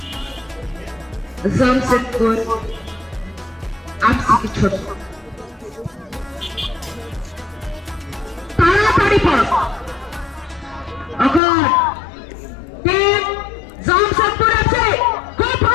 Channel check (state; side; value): drops out; right; at 11.4 s